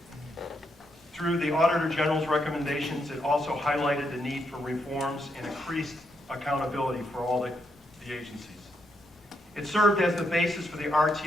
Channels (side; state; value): both; normal; correlation 0.79